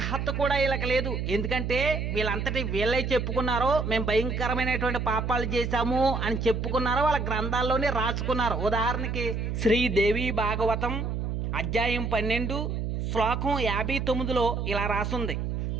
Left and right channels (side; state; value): right; noise; hum, 2 dB below the sound